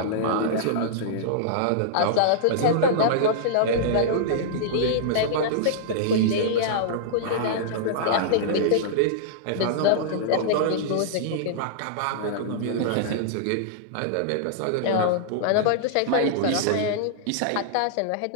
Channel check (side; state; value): both; different; correlation -0.02